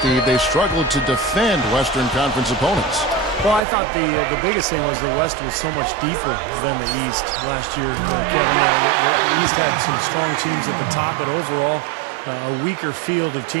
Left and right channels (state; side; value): drops out; left; at 3.6 s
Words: they struggled to defend Western Conference opponents. Well, I thought the biggest thing was the West was so much deeper than the East last year, Kevin. The East had some strong teams at the top, but overall, a weaker field of